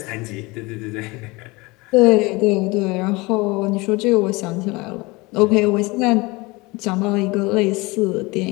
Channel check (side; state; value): right; quieter; 23.8 dB